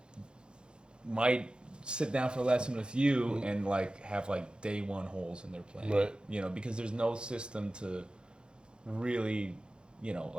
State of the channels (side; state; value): left; late; 0.051 ms